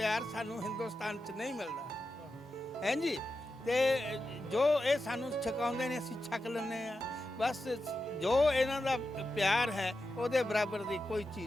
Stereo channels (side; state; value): both; normal; correlation 0.90